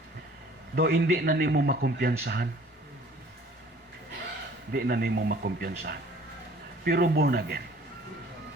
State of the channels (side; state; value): both; normal; correlation 0.52